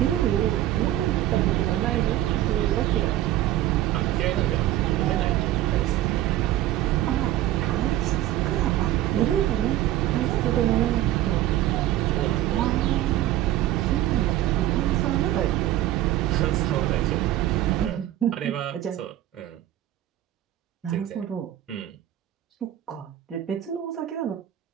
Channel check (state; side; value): quieter; left; 13.6 dB